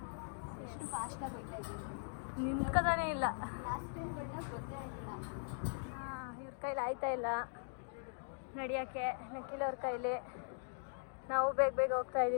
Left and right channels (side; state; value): right; silent; digital silence